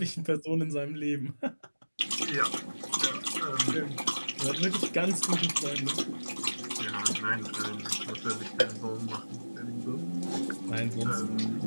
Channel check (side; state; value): both; inverted; correlation -1.00